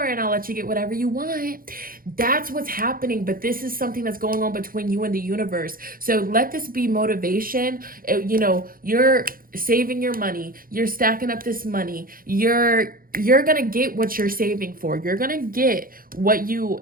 and I'll let you get whatever you want. That's what's happening. But this is something that's going on between you and the universe. So let this be motivation. You know, you're saving your money, you're stacking up this money, you're gonna get what you're saving for, you're gonna get what you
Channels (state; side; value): late; left; 0.42 ms